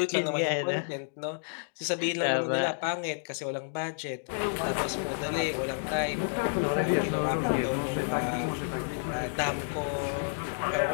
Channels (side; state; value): right; silent; digital silence